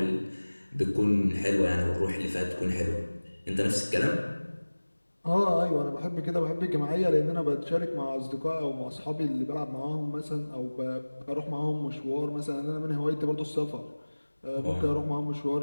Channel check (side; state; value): both; inverted; correlation -1.00